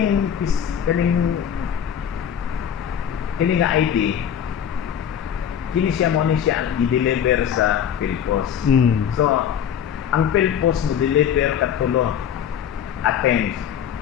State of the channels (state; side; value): quieter; right; 8.9 dB